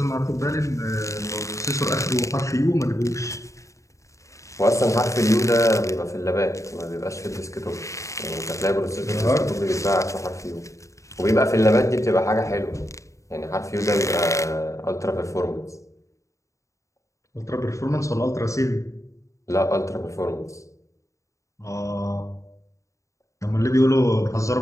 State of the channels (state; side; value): late; right; 0.15 ms